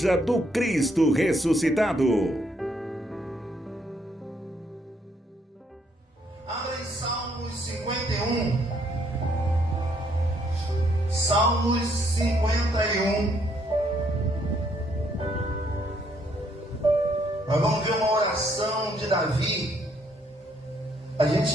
do Cristo Ressuscitado. Abra em Salmos 51. Salmos 51. Nós vamos ver uma oração de Davi. A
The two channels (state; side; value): normal; both; correlation 0.70